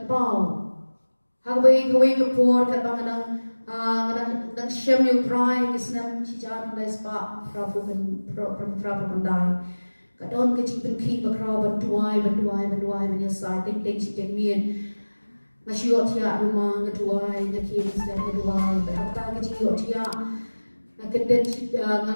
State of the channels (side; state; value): both; inverted; correlation -1.00